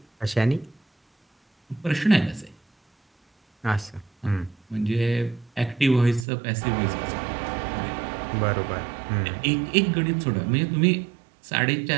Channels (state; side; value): drops out; left; at 6.2 s